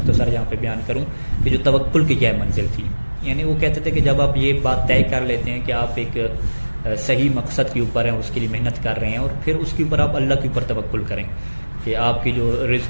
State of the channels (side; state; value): both; inverted; correlation -1.00